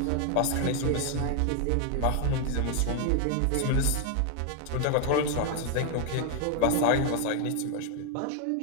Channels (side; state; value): both; different; correlation 0.00